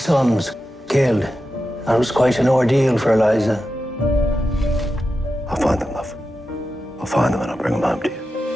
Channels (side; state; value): both; normal; correlation 0.90